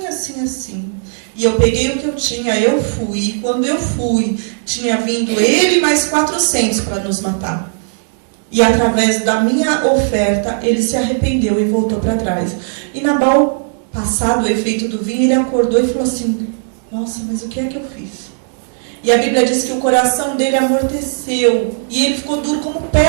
assim, assim. E eu peguei o que eu tinha, eu fui. E quando eu fui, tinha vindo ele mais 400 para nos matar. E através da minha oferta, ele se arrependeu e voltou para trás. E Nabal, passado o efeito do vinho, ele acordou e falou assim: nossa, mas o que é que eu fiz? E a Bíblia diz que o coração dele amorteceu. E ele ficou duro como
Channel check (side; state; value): left; silent; digital silence